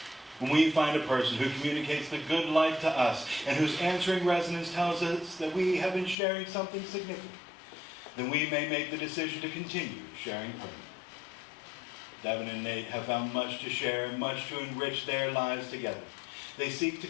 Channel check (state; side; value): drops out; right; at 6.2 s